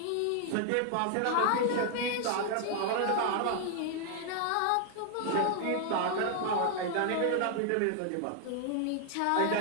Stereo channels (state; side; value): different; both; correlation 0.00